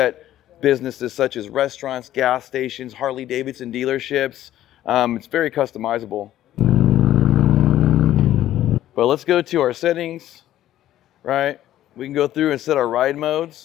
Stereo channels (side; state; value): right; quieter; 13.0 dB